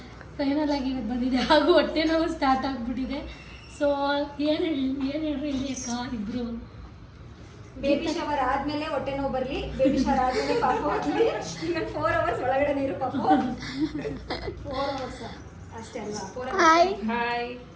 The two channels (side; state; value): both; identical; correlation 1.00